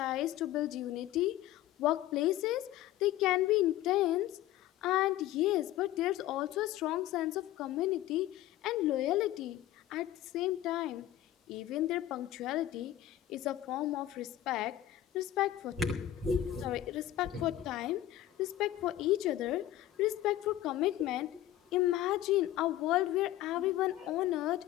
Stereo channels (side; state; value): right; quieter; 13.5 dB